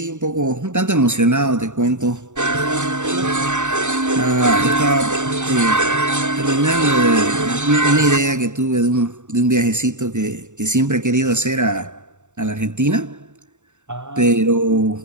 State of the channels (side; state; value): left; late; 0.84 ms